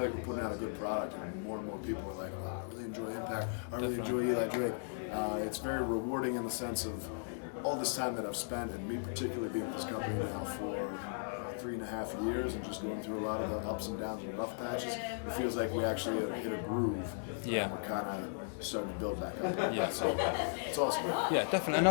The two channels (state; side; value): silent; right; digital silence